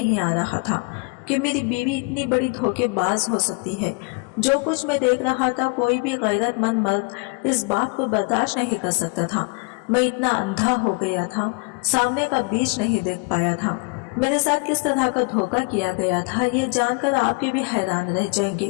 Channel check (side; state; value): right; quieter; 32.3 dB